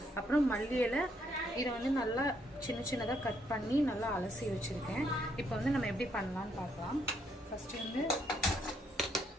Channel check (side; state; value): both; normal; correlation 0.72